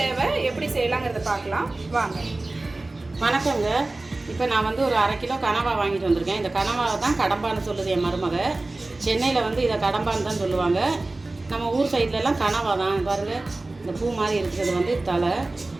தேவை, எப்படி செய்யலாங்கிறத பார்க்கலாம் வாங்க. வணக்கங்க. இப்போ நான் வந்து ஒரு 1/2 கிலோ கனவா வாங்கிட்டு வந்திருக்கேன். இந்த கனவாவை தான் கடம்பான்னு சொல்லுது என் மருமக. சென்னையில் வந்து இதை கடம்பான்னு தான் சொல்லுவாங்க. நம்ம ஊர் சைட்லலாம் கனவா தான். பாருங்கள், இந்த பூ மாதிரி இருக்கிறது வந்து தலை.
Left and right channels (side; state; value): left; quieter; 3.0 dB